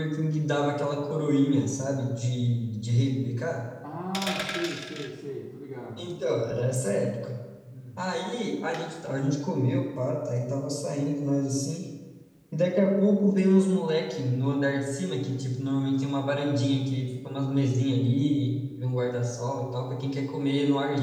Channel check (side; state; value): both; identical; correlation 1.00